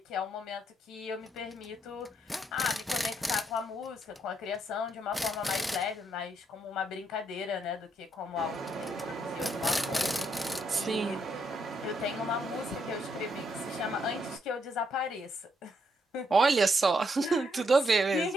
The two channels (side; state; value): both; normal; correlation 0.76